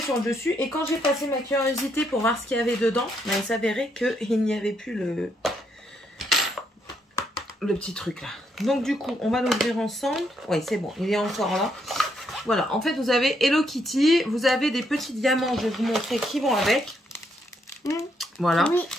sur le dessus. Et quand j'ai passé ma curiosité pour voir ce qu'il y avait dedans, ben, il s'avérait qu'il n'y avait plus le petit truc là. Donc du coup, on va l'ouvrir ensemble. Oui, c'est bon, il est encore là. Voilà, en fait, vous avez Hello Kitty. Vous avez des petits diamants, je vais vous montrer qui vont avec. Voilà. Oui.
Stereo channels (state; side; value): normal; both; correlation 0.75